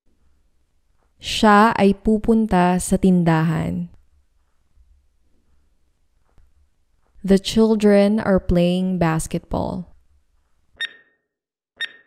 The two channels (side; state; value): both; identical; correlation 1.00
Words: Siya ay pupunta sa tindahan. The children are playing basketball.